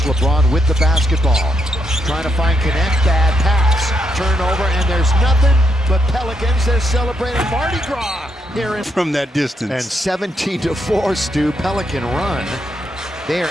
LeBron with the basketball. Trying to find Connect, bad pass. Turnover, and there's nothing but Pelicans. They're celebrating Mardi Gras here from that distance. And 17-4, Stu, Pelican run. They are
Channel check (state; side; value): normal; both; correlation 0.79